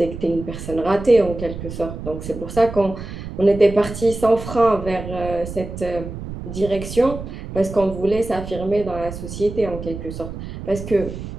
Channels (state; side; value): noise; right; rumble, 9 dB below the sound